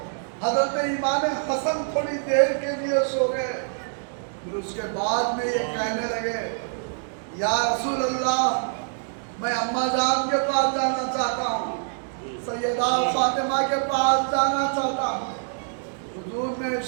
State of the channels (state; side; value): silent; left; digital silence